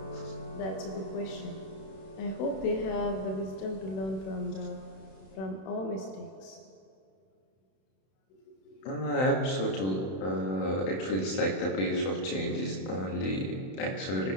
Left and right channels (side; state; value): right; late; 31 ms